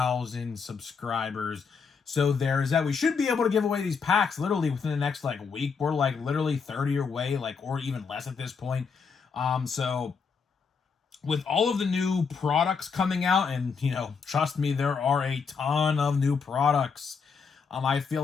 subscribers. So there's that. We should be able to give away these packs literally within the next week. We're literally 30 away, or even less at this point. So with all of the new products coming out, and trust me, there are a ton of new products. I feel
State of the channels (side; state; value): right; quieter; 5.6 dB